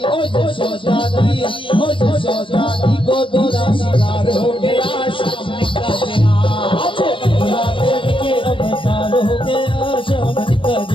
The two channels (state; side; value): late; right; 0.25 ms